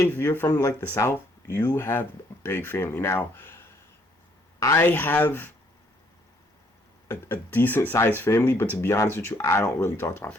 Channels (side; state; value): both; normal; correlation 0.67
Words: if you're from like the South, you have a big family. Now, I have a decent sized family, but to be honest with you, I don't really talk to my